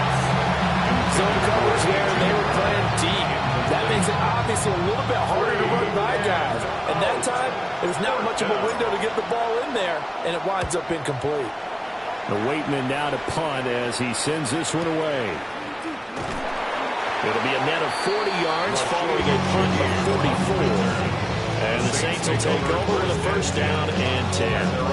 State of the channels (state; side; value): identical; both; correlation 1.00